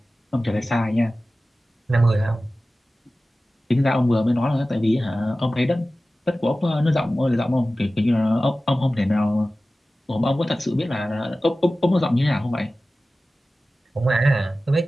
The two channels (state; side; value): normal; both; correlation 0.96